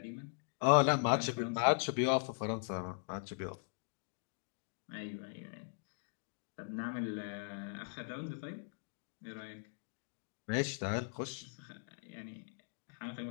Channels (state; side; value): silent; right; digital silence